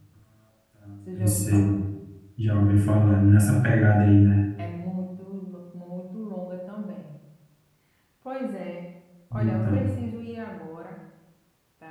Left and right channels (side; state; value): both; identical; correlation 1.00